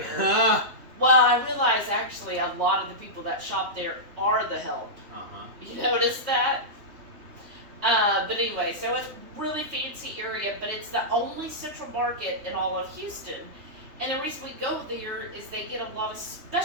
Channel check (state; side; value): late; left; 3.5 ms